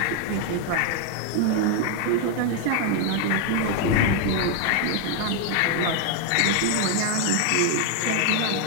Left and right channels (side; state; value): both; different; correlation 0.00